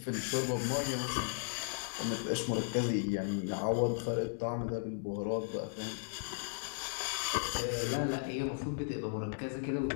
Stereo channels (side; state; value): right; silent; digital silence